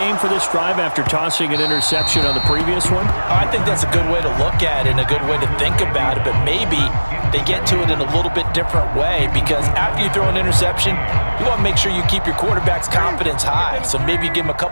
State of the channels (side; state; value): both; inverted; correlation -1.00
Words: for this drive after tossing an interception on the previous one? I think that's a good way to look at it and a good way to think about it, but maybe they get to it in a little bit different way, because after you throw an interception, you want to make sure you keep your quarterback's confidence high. So maybe give him a